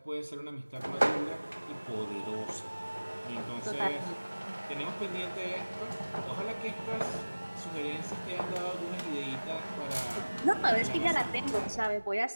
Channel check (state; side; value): inverted; both; correlation -1.00